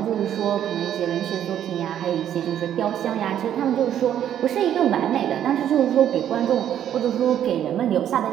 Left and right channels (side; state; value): left; quieter; 10.4 dB